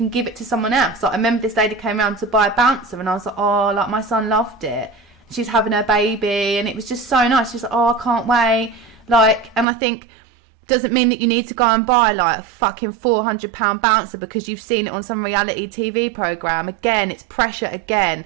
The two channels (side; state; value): left; drops out; at 9.7 s